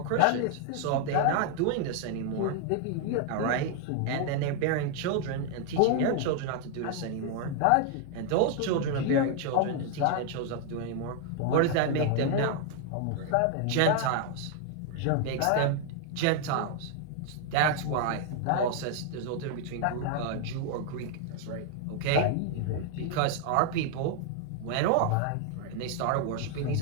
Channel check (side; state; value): both; different; correlation 0.00